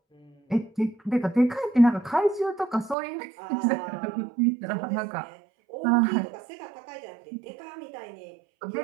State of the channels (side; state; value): left; drops out; at 3.0 s